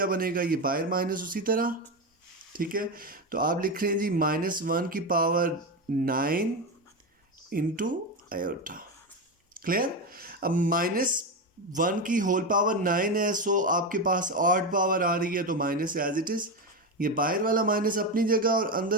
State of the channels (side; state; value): both; normal; correlation 0.14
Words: बनेगा, ये बाहर माइनस उसी तरह। ठीक है, तो आप लिख रहे हैं जी -1 की पावर 9 इंटू आयोटा। क्लियर, अब -1 की होल पावर 9 है, सो आपके पास ऑड पावर आ रही है तो माइनस एज इट इज़, ये बाहर वाला माइनस अपनी जगह और